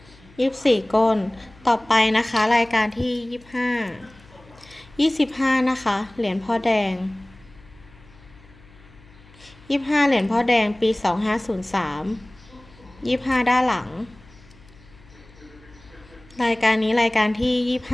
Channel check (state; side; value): noise; left; hum, 25 dB below the sound